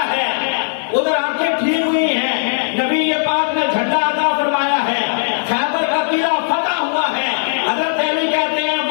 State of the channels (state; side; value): silent; right; 67 dB below the other